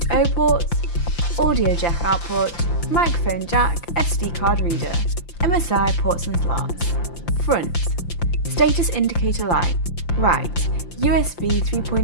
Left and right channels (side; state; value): right; late; 5.8 ms